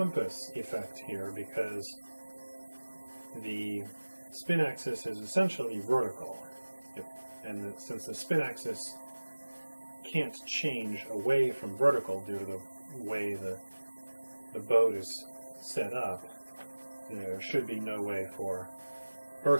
effect here because the spin axis is essentially vertical, and since the spin axis can't change away from vertical due to the way the boat is set up, there should be no way for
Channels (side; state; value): both; inverted; correlation -1.00